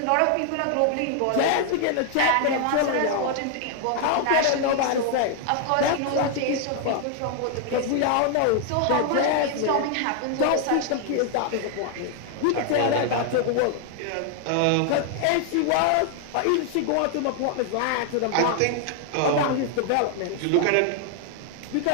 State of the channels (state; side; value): different; both; correlation 0.00